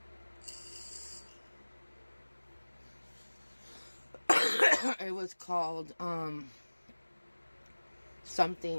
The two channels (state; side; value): inverted; both; correlation -1.00